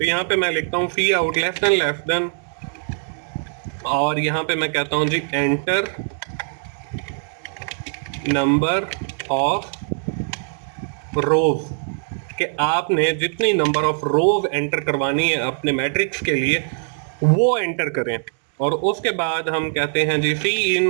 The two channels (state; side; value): silent; left; 61 dB below the other